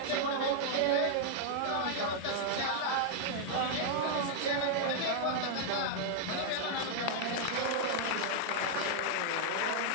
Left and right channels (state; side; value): different; both; correlation 0.00